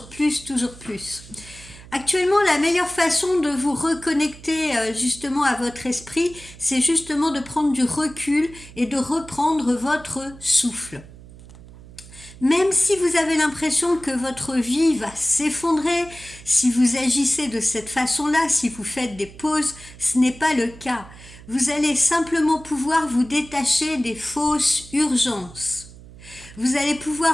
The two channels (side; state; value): right; noise; hum, 19 dB below the sound